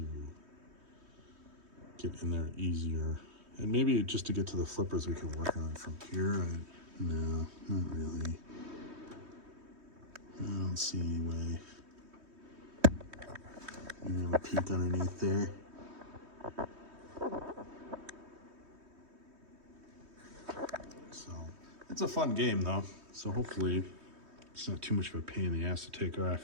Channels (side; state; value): left; late; 3.2 ms